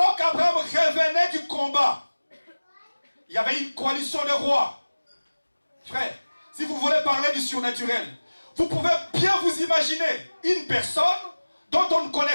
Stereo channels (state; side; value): inverted; both; correlation -1.00